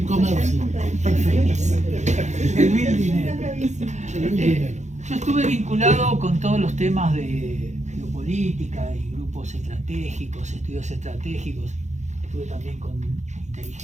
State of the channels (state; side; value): late; left; 0.34 ms